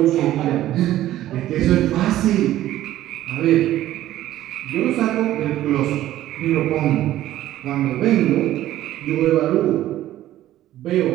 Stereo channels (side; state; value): left; quieter; 13.8 dB